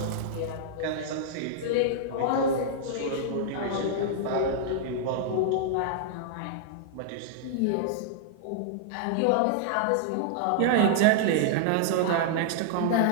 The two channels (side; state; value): both; different; correlation -0.01